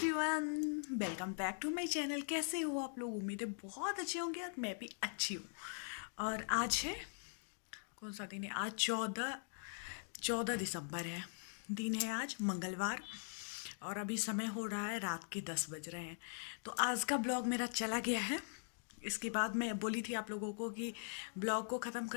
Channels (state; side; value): silent; right; digital silence